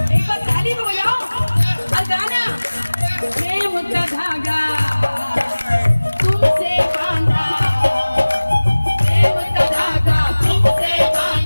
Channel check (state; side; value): inverted; both; correlation -1.00